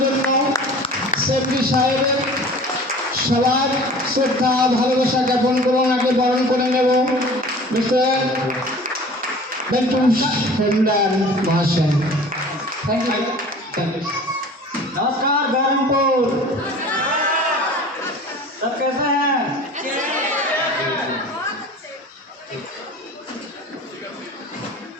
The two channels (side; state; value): both; normal; correlation 0.43